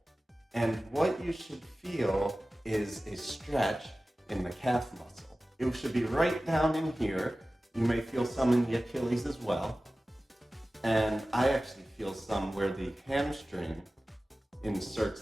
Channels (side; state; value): both; normal; correlation 0.96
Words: And what you should feel is a stretch in the calf muscle. It should be right down in here. You may feel some in the Achilles as well. And I actually feel some where the hamstring